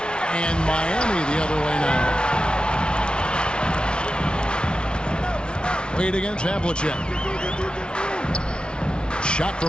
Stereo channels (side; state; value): right; late; 0.056 ms